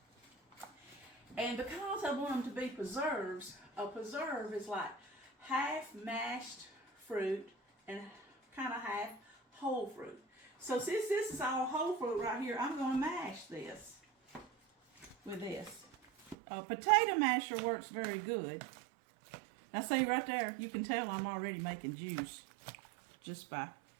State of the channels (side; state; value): left; drops out; at 16.4 s